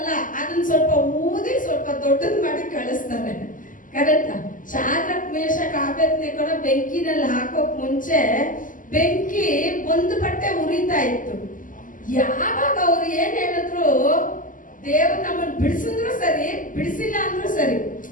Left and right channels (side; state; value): right; late; 0.38 ms